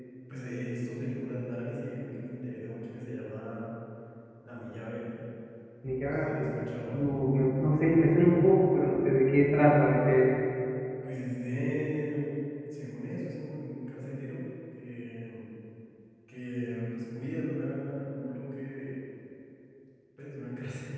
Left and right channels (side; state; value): both; identical; correlation 1.00